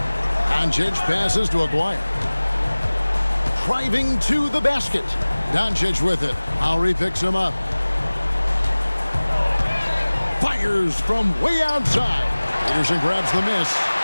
Doncic passes to Aguirre. Driving to the basket. Doncic with it. Lowry picks him up. Fires from way outside. Peterson grabs the miss.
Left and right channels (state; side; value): inverted; both; correlation -1.00